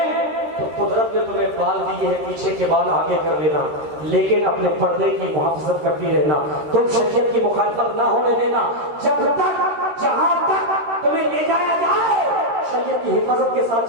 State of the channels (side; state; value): left; late; 13 ms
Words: تو قدرت نے تمہیں بال دیے ہیں، پیچھے کے بال آگے کر لینا، لیکن اپنے پردے کی محافظت کرتی رہنا، تم شریعت کی مخالفت نہ ہونے دینا، جب تک جہاں تک تمہیں لے جایا جائے شریعت کی حفاظت کے